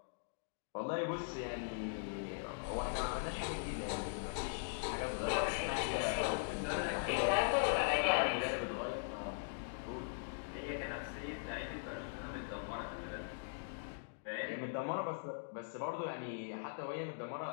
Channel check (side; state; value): right; silent; digital silence